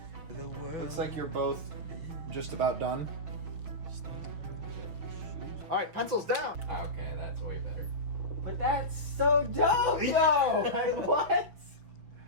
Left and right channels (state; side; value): late; left; 6.5 ms